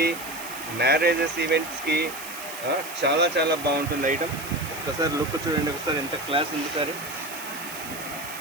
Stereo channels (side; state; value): right; noise; hiss, 12 dB below the sound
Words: మ్యారేజెస్, ఈవెంట్స్కి చాలా చాలా బాగుంటుంది ఐటమ్. ఒకసారి లుక్ చూడండి, ఒకసారి ఎంత క్లాస్ ఉంది సారీ.